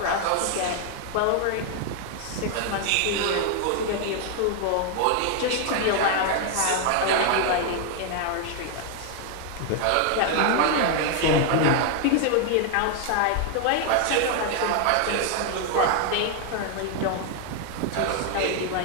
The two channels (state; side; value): different; both; correlation 0.00